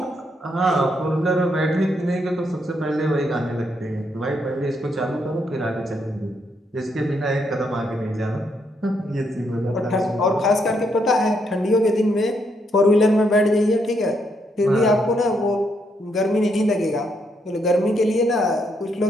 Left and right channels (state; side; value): normal; both; correlation 0.76